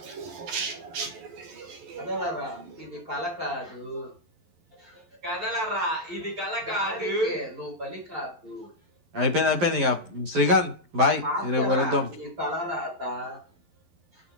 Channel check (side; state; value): left; late; 11 ms